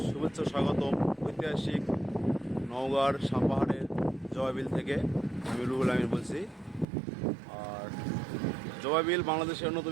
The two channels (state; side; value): drops out; left; at 6.9 s